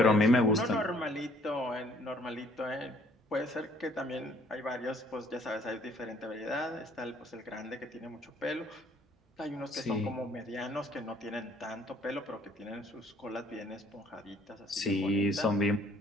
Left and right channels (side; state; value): both; normal; correlation 0.61